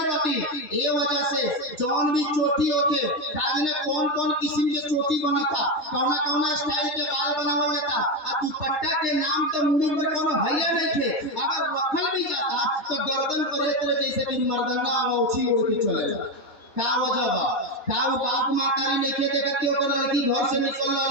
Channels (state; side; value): late; right; 3.3 ms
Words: रहती। ये वजह से जौन भी चोटी होते काजने कौन कौन किस्म के चोटी बना था, कौना कौना स्टाइल के बाल बनावल जाता, आ दुपट्टा के नाम तो मुंह पर कोनो भैया नहीं थे, अगर रखल भी जाता तो गर्दन पर एक तरह जैसे कि मर्दाना औछी ओढ़ के चलेगा। का वजह बा, का वो बाप मातारी नहीं खे देखत कि ओकर लड़की घर से निकल